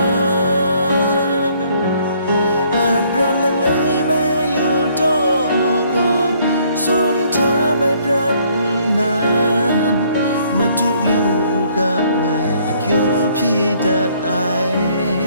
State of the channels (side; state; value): both; inverted; correlation -0.64